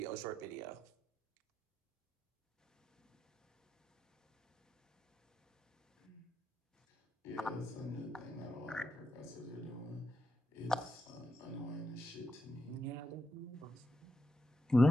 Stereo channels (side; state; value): both; normal; correlation 0.85